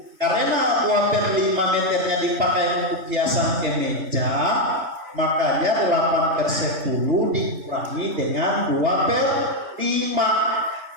Karena 2/5 meternya dipakai untuk hiasan kemeja, makanya 8/10 dikurangi dengan 2/5.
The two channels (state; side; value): late; left; 3.2 ms